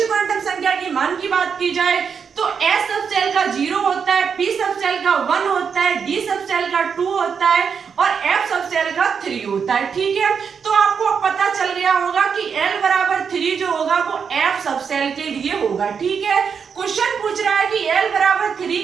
क्वांटम संख्या के मान की बात की जाए तो S सबसेल का 0 होता है, P सबसेल का 1 होता है, डी सब सेल का 2 होता है और एफ सब सेल का 3 होता है। ठीक है, तो आपको पता चल गया होगा कि L बराबर 3 जो होगा वो एफ सब सेल के लिए होगा। ठीक है, क्वेश्चन पूछ रहा है कि L बराबर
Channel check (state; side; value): quieter; left; 6.5 dB